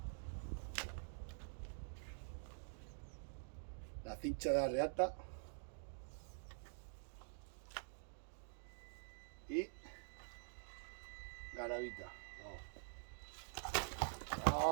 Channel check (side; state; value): left; silent; digital silence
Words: La cincha de la reata. Y garabita.